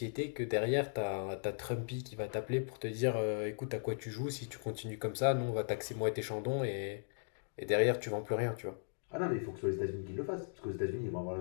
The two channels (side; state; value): right; silent; digital silence